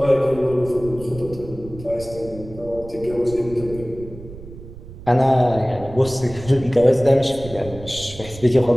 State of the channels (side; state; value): right; noise; rumble, 15 dB below the sound